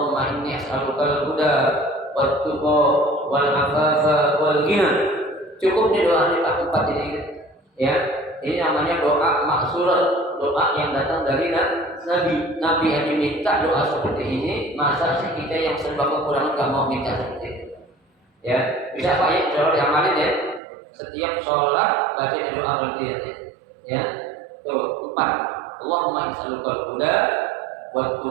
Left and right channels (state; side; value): drops out; left; at 20.6 s